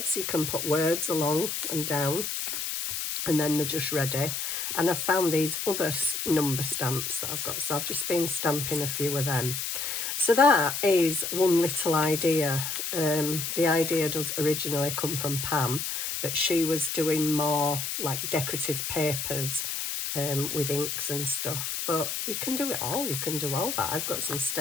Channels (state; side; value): noise; left; hiss, 3 dB below the sound